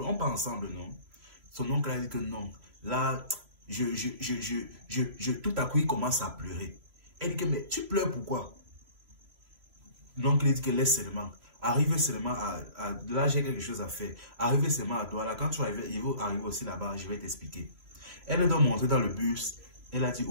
on part ensemble, non? Son oncle a dit que non. Là, tout à coup, il commence à pleurer. Elle dit que, mais tu pleures pourquoi? L'oncle dit que laisse seulement. Arrive seulement là, j'ai quelque chose à faire. Arrive seulement à toi. Là, quand tu arrives, il va arriver aussi là-bas, je vais t'expliquer. Elle est donc montée dans le bus. Elle a dit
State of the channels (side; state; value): left; late; 3.0 ms